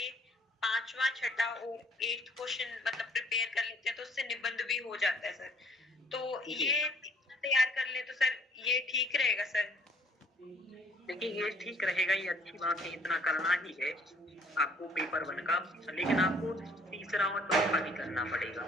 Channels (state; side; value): normal; both; correlation 0.61